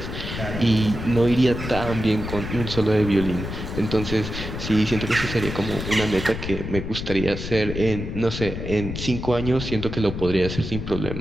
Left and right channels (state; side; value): noise; left; rumble, 6 dB below the sound